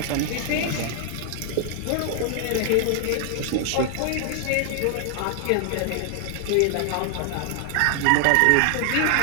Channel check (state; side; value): different; both; correlation 0.00